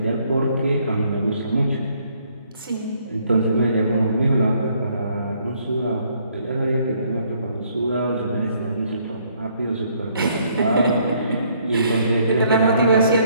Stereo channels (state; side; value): inverted; both; correlation -0.67